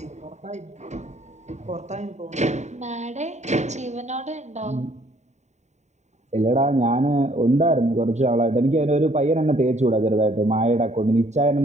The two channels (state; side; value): late; left; 0.34 ms